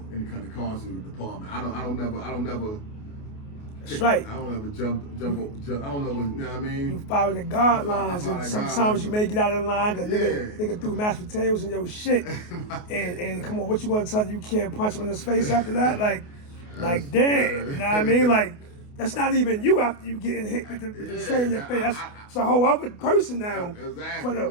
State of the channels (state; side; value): late; right; 28 ms